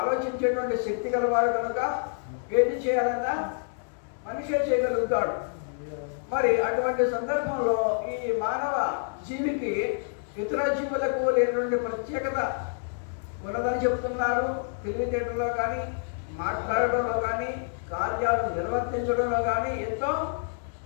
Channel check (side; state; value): right; silent; digital silence